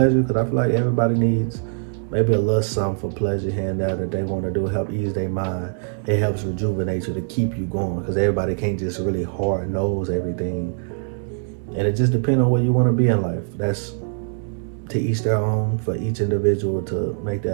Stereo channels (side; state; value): left; silent; 64 dB below the other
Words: because I feel like everybody needs maybe a little something for pleasure here and there that they want to do, help ease their mind. It helps rejuvenate you to keep you going, because everybody can't just really hard nose everything. And it just depends on where you want to be in life. That's to each their own, for each individual to make